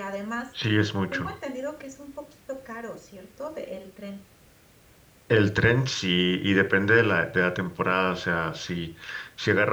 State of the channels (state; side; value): identical; both; correlation 1.00